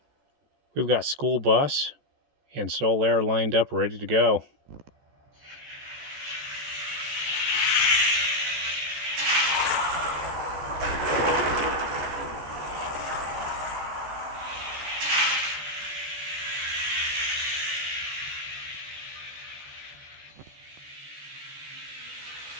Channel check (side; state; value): left; late; 14 ms